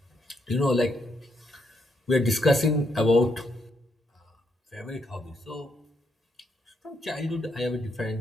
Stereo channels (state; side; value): normal; both; correlation 0.78